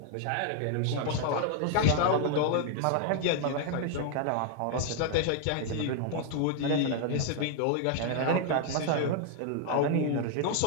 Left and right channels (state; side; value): different; both; correlation 0.00